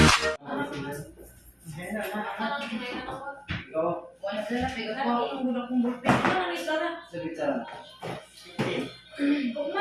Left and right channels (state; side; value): identical; both; correlation 1.00